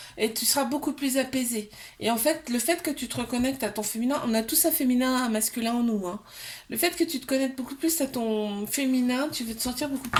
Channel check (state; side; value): identical; both; correlation 1.00